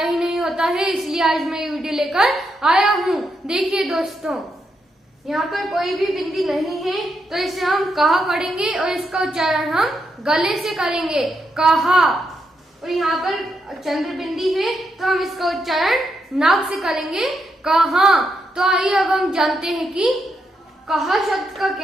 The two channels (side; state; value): both; normal; correlation 0.81